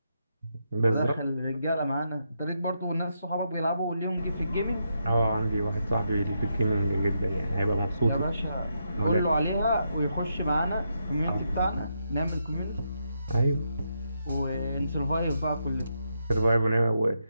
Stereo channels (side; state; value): both; inverted; correlation -0.82